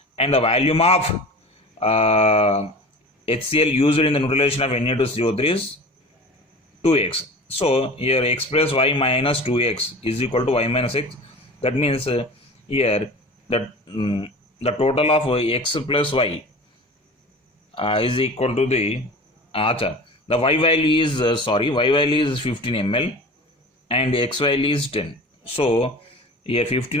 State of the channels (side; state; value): both; normal; correlation 0.37